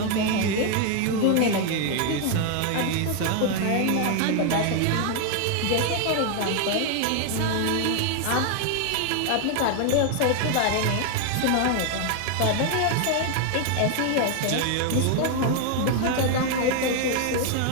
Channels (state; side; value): different; both; correlation 0.01